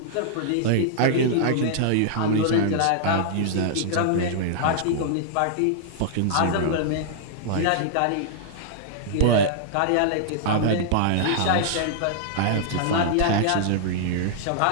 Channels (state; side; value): different; both; correlation -0.02